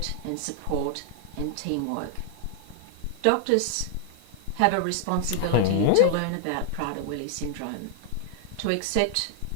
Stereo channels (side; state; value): both; different; correlation 0.00